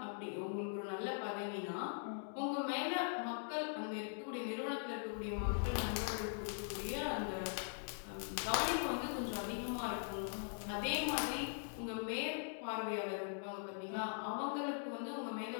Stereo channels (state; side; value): silent; right; digital silence